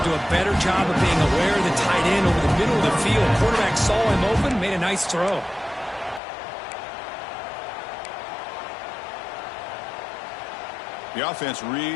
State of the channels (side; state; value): right; drops out; at 6.2 s